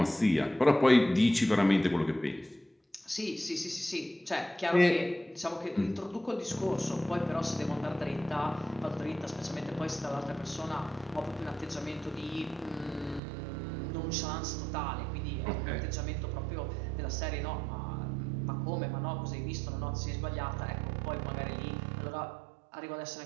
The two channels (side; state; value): left; drops out; at 13.2 s